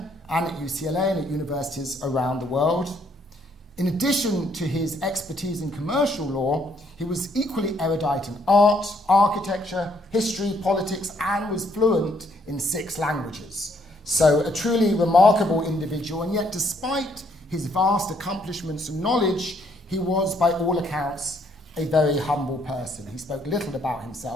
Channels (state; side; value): normal; both; correlation 0.69